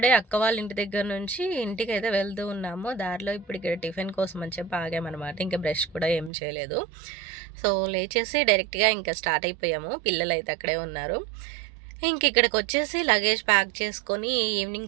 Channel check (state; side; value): drops out; left; at 6.3 s